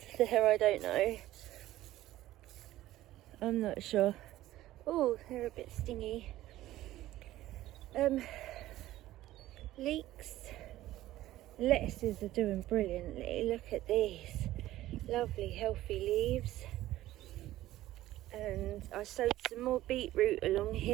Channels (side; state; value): left; quieter; 15.1 dB